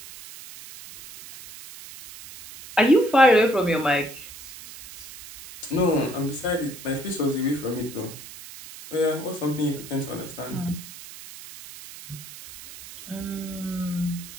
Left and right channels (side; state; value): right; noise; hiss, 15 dB below the sound